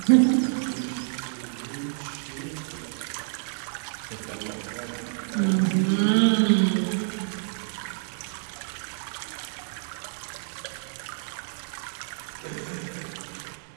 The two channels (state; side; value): silent; left; digital silence